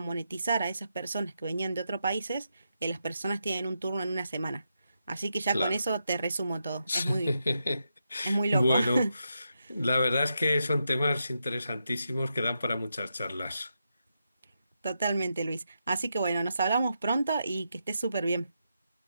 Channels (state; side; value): inverted; both; correlation -0.84